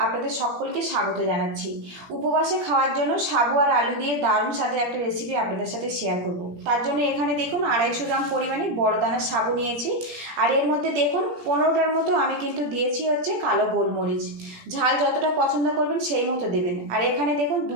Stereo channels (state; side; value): late; left; 17 ms